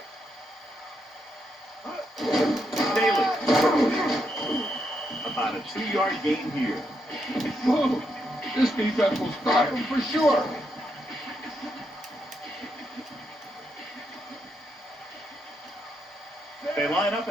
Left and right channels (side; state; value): both; normal; correlation 0.80